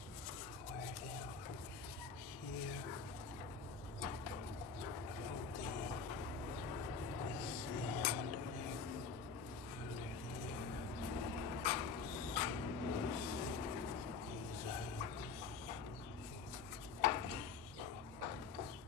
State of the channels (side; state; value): right; quieter; 5.2 dB